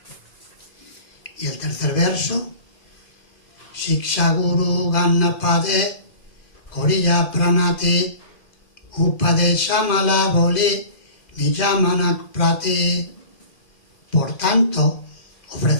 Y el tercer verso: Shiksha Guru Gannapade Koriya Pranati Upadeshamala Boli Nijamanak Prati. Por tanto,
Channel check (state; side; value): late; right; 2.4 ms